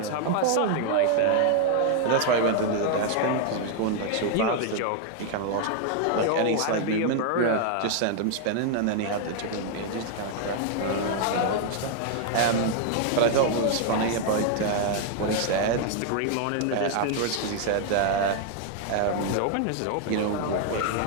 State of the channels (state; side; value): different; both; correlation 0.00